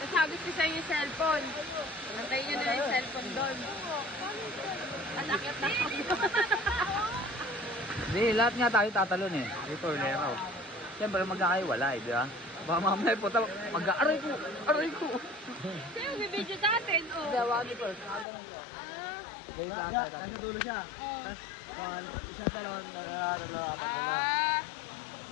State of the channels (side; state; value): right; drops out; at 18.2 s